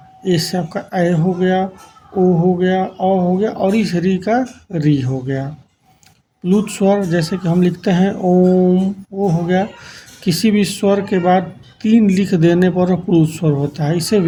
ए से आपका ऐ हो गया, ओ हो गया, औ हो गया और इस री का री हो गया। प्लुत स्वर जैसे कि हम लिखते हैं ओम, ओ हो गया। किसी भी स्वर के बाद 3 लिख देने पर प्लुत स्वर होता है। इसे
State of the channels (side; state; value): both; identical; correlation 1.00